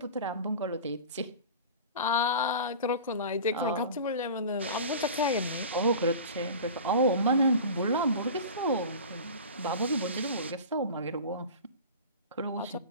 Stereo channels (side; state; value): both; inverted; correlation -0.35